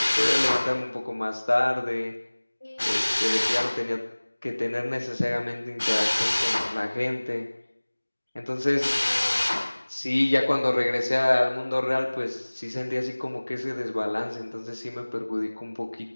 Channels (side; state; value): both; inverted; correlation -1.00